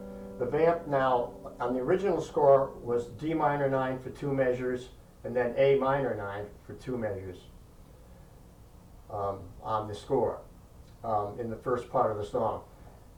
the vamp now, on the original score, was D minor 9 for 2 measures, and then A minor 9 for 2 measures on the score in the first part of the song.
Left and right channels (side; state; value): both; identical; correlation 1.00